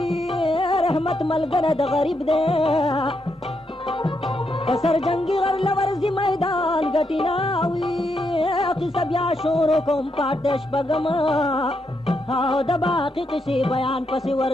رحمت ملګری د غریب دی په سر جنګي غر لورځي میدان ګټي ناوي قصه بیا شروع کوم پاټ د شپږم او د باقي قصې بیان پسې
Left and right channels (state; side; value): normal; both; correlation 0.81